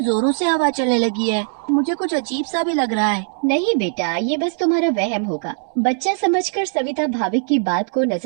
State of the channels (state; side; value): silent; left; 66 dB below the other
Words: जोरों से हवा चलने लगी है। मुझे कुछ अजीब सा भी लग रहा है। नहीं बेटा, ये बस तुम्हारा वहम होगा। बच्चा समझकर सविता भाविक की बात को